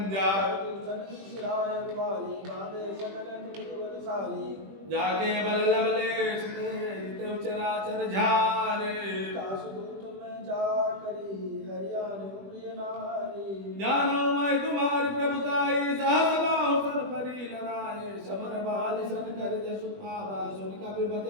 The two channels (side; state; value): left; late; 20 ms